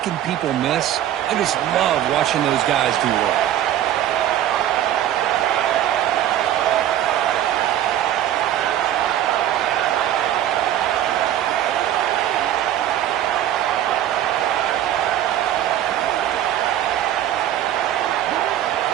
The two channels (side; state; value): left; quieter; 11.7 dB